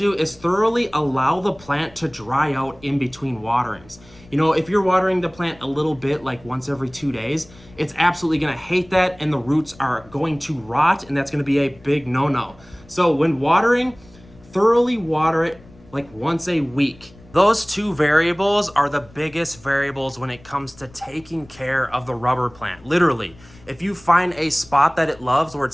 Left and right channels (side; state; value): left; noise; rumble, 24 dB below the sound